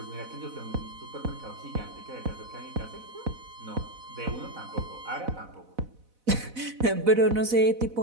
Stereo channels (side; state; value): left; late; 4.0 ms